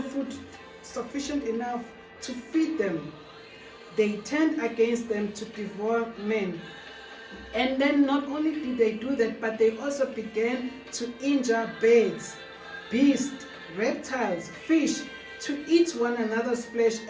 food sufficient enough to feed them. They turned against them to devour men. And then not only did they do that, but they also began to injure birds, beasts, reptiles, fish, to eat one another's flesh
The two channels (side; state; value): both; identical; correlation 1.00